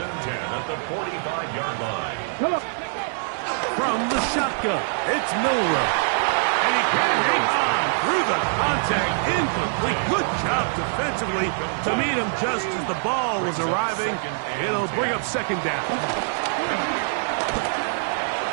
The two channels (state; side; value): silent; left; digital silence